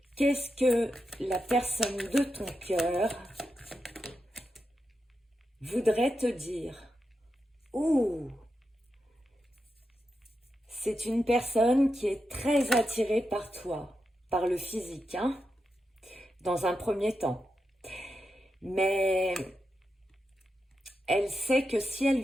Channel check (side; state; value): both; normal; correlation 0.87